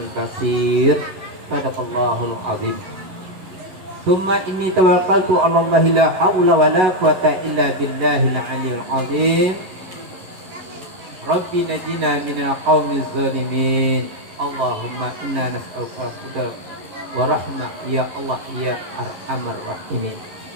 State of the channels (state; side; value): late; left; 11 ms